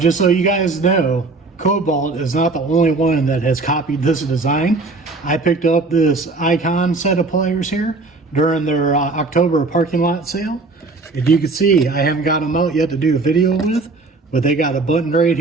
so you guys know, Kobalt is not the only one that has copied this design. I picked up this Icon set of pliers here during their October parking lot sale. If you can see, I haven't got them out yet to do a video with, but they got a button right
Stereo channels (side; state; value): left; quieter; 3.6 dB